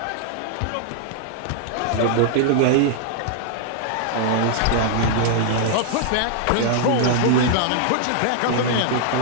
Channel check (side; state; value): both; different; correlation -0.01